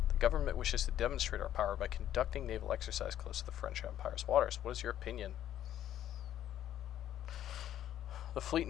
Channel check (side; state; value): right; quieter; 11.5 dB